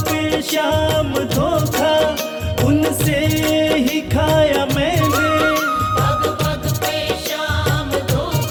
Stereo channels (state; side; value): identical; both; correlation 1.00